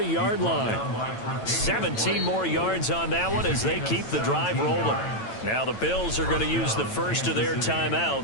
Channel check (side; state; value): right; late; 9.0 ms